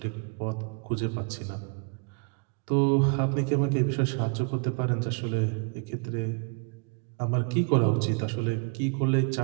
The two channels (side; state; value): left; quieter; 36.9 dB